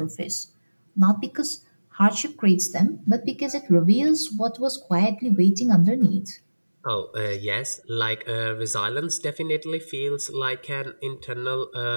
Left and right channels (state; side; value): inverted; both; correlation -1.00